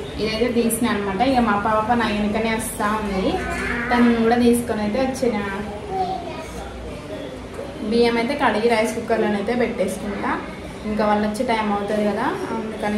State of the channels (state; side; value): identical; both; correlation 1.00